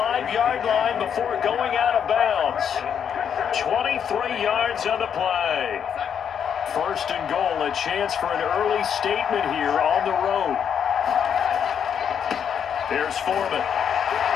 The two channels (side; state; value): right; quieter; 8.0 dB